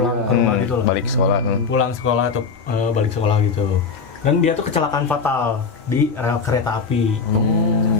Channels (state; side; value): quieter; right; 5.2 dB